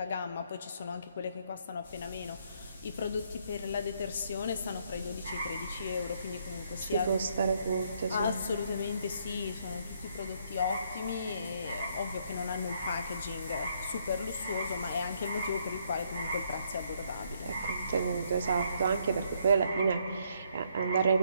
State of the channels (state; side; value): inverted; both; correlation -0.70